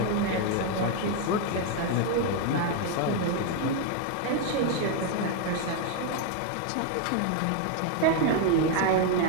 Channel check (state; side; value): different; both; correlation 0.01